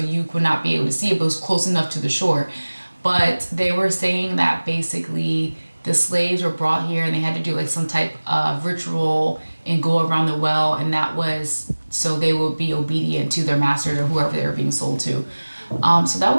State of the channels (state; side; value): inverted; both; correlation -1.00